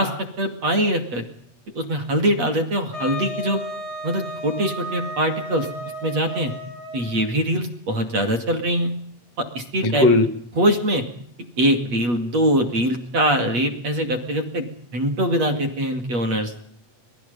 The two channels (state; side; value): late; left; 8.3 ms